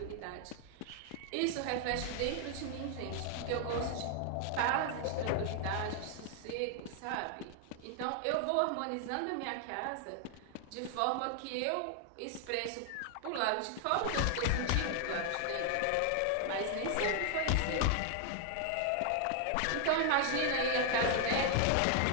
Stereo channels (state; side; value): different; both; correlation 0.00